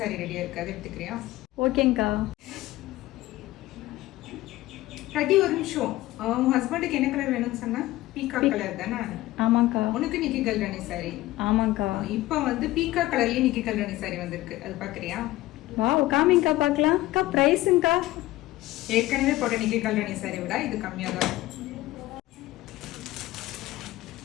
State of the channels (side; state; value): right; quieter; 17.2 dB